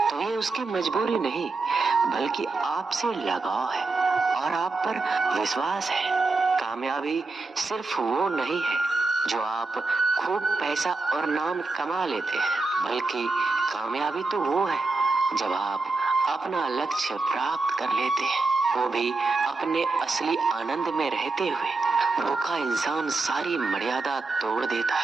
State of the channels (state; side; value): quieter; left; 3.6 dB